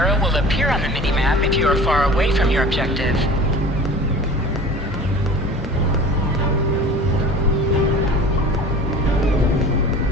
will appear on the mini-map if you are far away from your objective.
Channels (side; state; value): both; normal; correlation 0.41